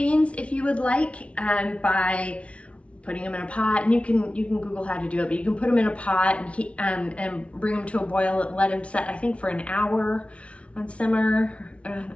if you would like, by putting them in a pot, and you can Google how to do it, but you can put them in a pot and and bring them to a boil and let them set, I think, for an hour on simmer,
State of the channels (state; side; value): late; right; 0.062 ms